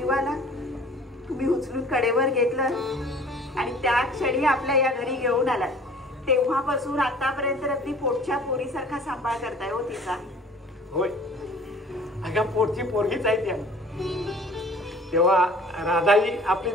तुम्ही उचलून कडेवर घेतलं आणि त्या क्षणी आपल्या या घरी घेऊन आला. तेव्हापासून आतापर्यंत अगदी पोटच्या पोरीसारखा सांभाळ करताय हो तिचा. होय अगं पोटची पोरगीच आहे त्या, तेव्हा राधा ही आपली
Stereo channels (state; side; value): normal; both; correlation 0.49